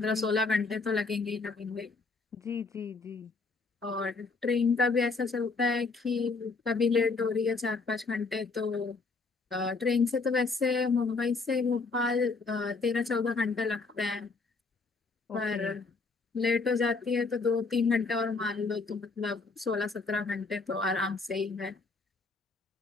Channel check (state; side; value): quieter; right; 4.1 dB